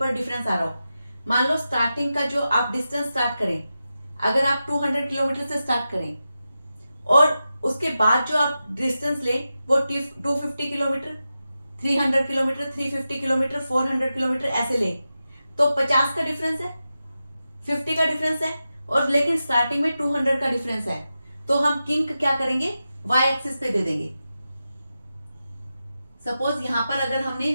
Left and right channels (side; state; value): both; inverted; correlation -0.91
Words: डिफरेंस आ रहा हो। मान लो स्टार्टिंग का जो आप डिस्टेंस स्टार्ट करें, अगर आप 200 किलोमीटर से स्टार्ट करें और उसके बाद जो आप डिस्टेंस ले वो 250 किलोमीटर, 300 किलोमीटर, 350 किलोमीटर, 400 किलोमीटर ऐसे ले, तो 50 का डिफरेंस है, 50 का डिफरेंस है, और लेकिन स्टार्टिंग में 200 का डिफरेंस है। तो हम किंक क्या करेंगे, y एक्सिस पे दे देंगे। सपोज यहां पर अगर हमने